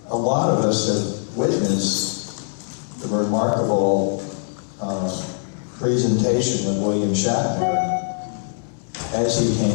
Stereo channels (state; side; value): silent; right; 64 dB below the other